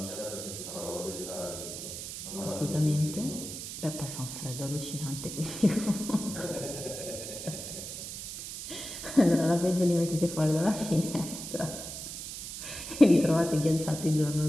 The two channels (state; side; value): noise; right; hiss, 8 dB below the sound